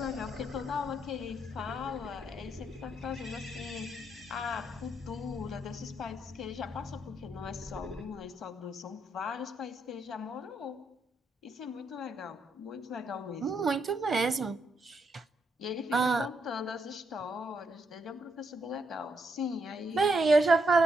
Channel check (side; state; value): both; normal; correlation 0.78